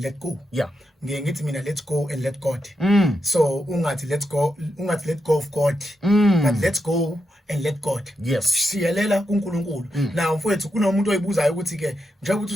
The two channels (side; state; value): both; normal; correlation 0.84